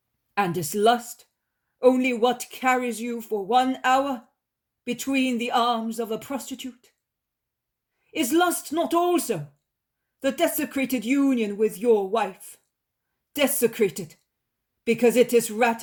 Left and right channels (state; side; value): identical; both; correlation 1.00